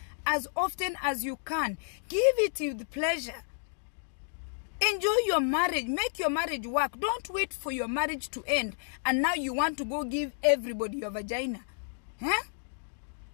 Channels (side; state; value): right; silent; digital silence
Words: as often as you can. Give it with pleasure. Enjoy your marriage. Make your marriage work. Don't wait for your marriage to end and now you want to go give everybody your vagina. Huh?